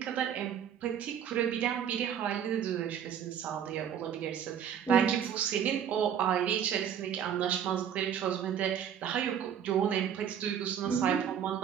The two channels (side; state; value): left; quieter; 8.8 dB